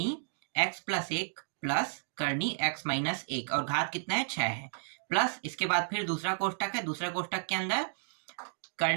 x+1 प्लस करनी x-1 और घात कितना है 6 है, प्लस इसके बाद फिर दूसरा कोष्टक है, दूसरा कोष्टक के अंदर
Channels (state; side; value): silent; left; digital silence